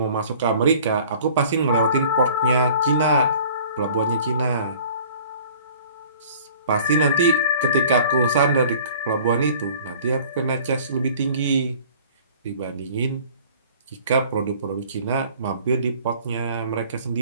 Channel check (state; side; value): inverted; both; correlation -0.49